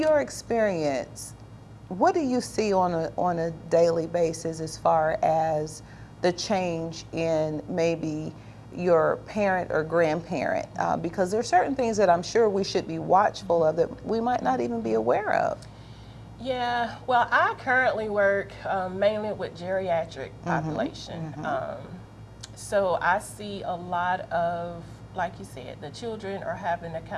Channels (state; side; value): identical; both; correlation 1.00